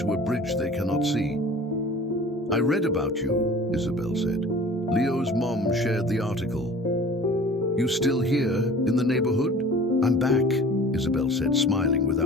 a bridge they cannot see. I read about you, Isabel said. Leo's mom shared the article. You still here in the neighborhood? I'm back, Isabel said, smiling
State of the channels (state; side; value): normal; both; correlation 0.45